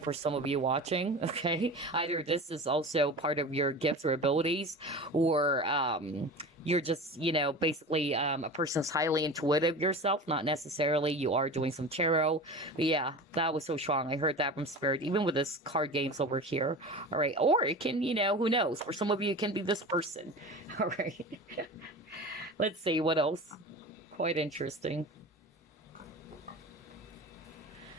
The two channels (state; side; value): normal; both; correlation 0.32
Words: for some of you watching, okay? Either this is also part of your gifts or abilities, or you're just, basically a person's highly intuitive yourself. Not necessarily you are doing some tarot. But yeah, that was so strong. I heard that from Spirit, even with this card games over here. All right. Or it can, who knows? For some of you, it can be this person. All right. Let's see what else. Quite interesting.